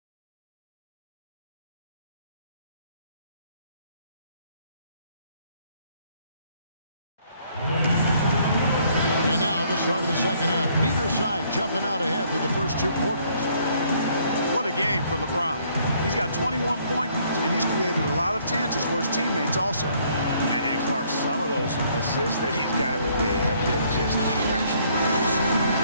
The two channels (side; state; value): both; inverted; correlation -0.65